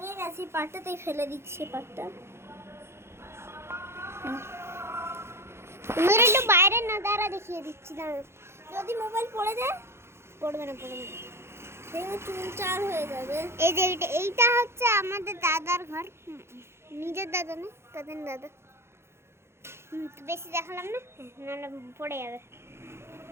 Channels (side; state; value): left; late; 0.12 ms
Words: গেছে, পাটটাতেই ফেলে দিচ্ছি পাটটা। তুমি একটু বাইরে না দাঁড়া, দেখিয়ে দিচ্ছি। দাঁড়া, যদি মোবাইল পড়ে যায় পড়বে না। ভেঙে চুনচার হয়ে যাবে। এই যে এইটা হচ্ছে আমাদের দাদার ঘর। নিজের দাদা না, তাদের দাদা। তো বেশি দেখালাম না, নাহলে পড়ে যাবে।